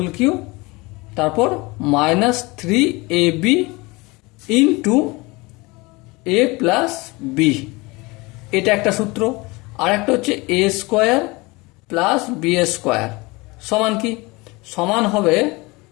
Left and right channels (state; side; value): quieter; right; 24.3 dB